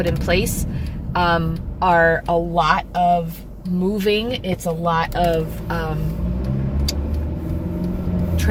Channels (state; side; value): identical; both; correlation 1.00